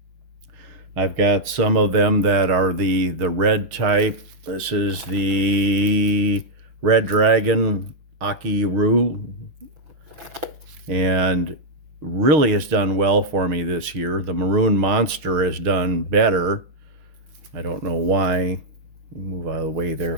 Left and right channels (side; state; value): left; late; 6.5 ms